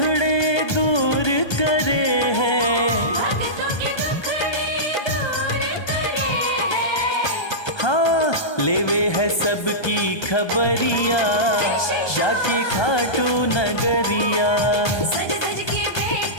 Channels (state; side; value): late; right; 1.2 ms